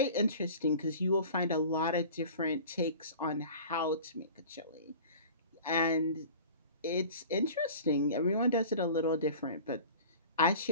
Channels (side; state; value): both; inverted; correlation -0.41